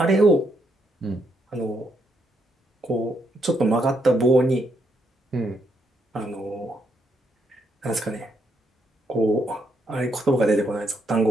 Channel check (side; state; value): both; normal; correlation 0.76